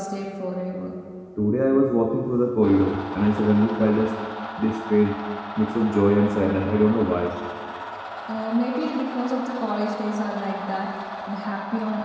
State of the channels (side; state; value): both; identical; correlation 1.00